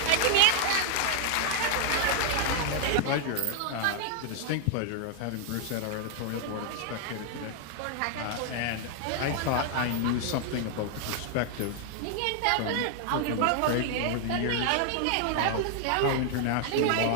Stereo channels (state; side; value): different; both; correlation 0.00